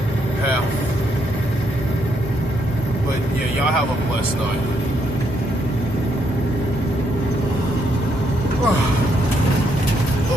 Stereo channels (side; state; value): both; normal; correlation 0.75